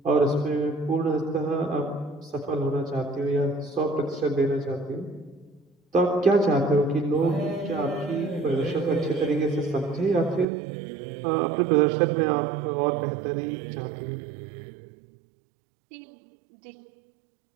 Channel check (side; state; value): left; drops out; at 10.5 s